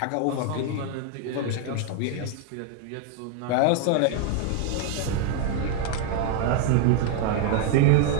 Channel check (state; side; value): different; both; correlation 0.01